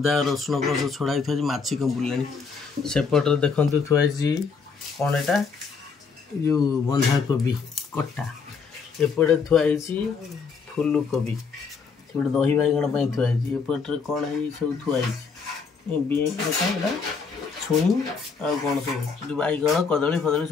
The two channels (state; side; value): quieter; right; 5.3 dB